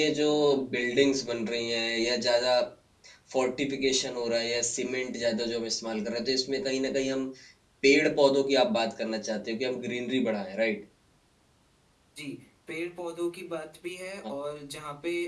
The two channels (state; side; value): identical; both; correlation 1.00